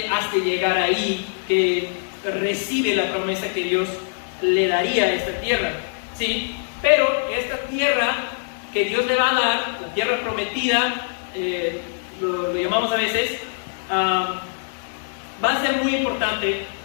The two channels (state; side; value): silent; right; digital silence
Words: hasta llegar ahí que recibe la promesa que Dios le daría a esta tierra, ¿sí? Pero esta tierra que Dios le va a dar, la tierra prometida, lo llamamos a veces, va a ser muy importante